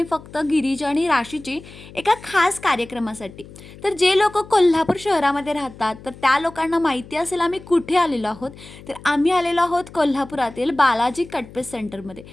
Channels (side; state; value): left; noise; hum, 19 dB below the sound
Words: फक्त गिरीजा आणि राशीची एका खास कार्यक्रमासाठी. तर जे लोक कोल्हापूर शहरामध्ये राहतात तर त्या लोकांना माहिती असेल आम्ही कुठे आलेलो आहोत. तर आम्ही आलेलो आहोत कोल्हापुरातील बालाजी कटपीस सेंटरमध्ये.